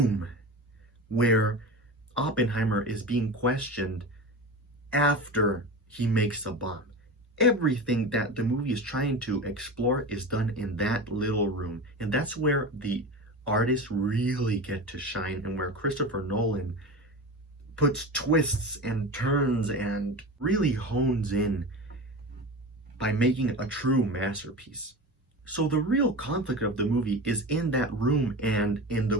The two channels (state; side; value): normal; both; correlation 0.28